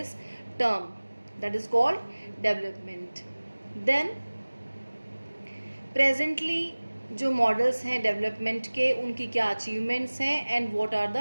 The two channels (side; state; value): both; inverted; correlation -1.00